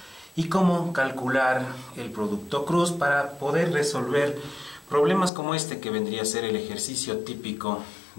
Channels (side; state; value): right; drops out; at 5.3 s